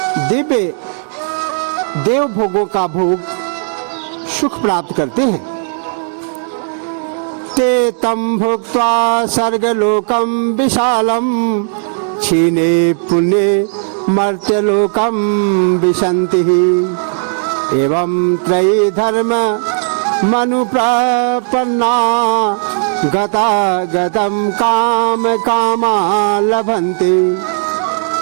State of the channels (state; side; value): silent; left; 66 dB below the other